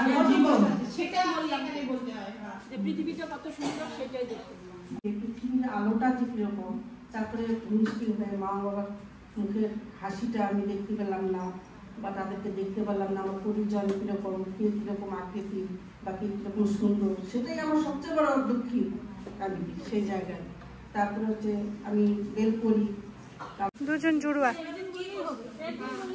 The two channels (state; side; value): identical; both; correlation 1.00